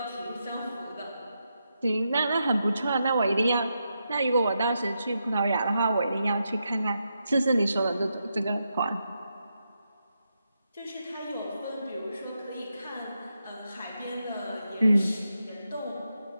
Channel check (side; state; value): both; inverted; correlation -0.85